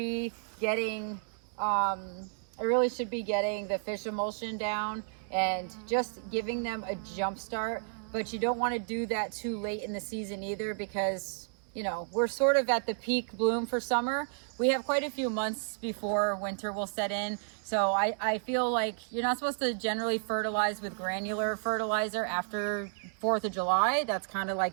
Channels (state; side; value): silent; left; digital silence